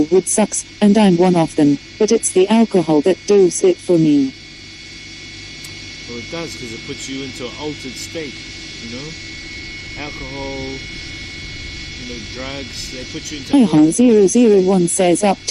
would sucks, and I'm one of them, but it's the alcohol that does it for me. Well, it does, because it puts you into an altered state, you know? Alcohol, you know, drugs, they put you into... Ihong001 says up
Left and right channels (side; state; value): both; identical; correlation 1.00